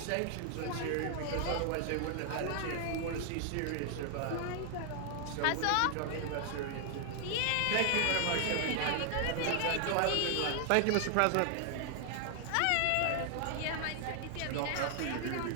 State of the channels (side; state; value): both; different; correlation 0.00